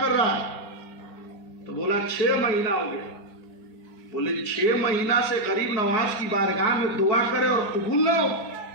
کر رہا ہے؟ تو بولا 6 مہینہ ہو گیا۔ بولے 6 مہینہ سے غریب نواز کی بارگاہ میں دعا کرے اور قبول نہ ہو؟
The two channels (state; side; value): late; right; 4.3 ms